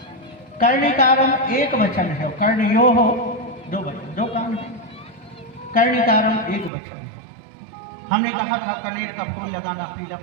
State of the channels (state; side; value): drops out; left; at 6.7 s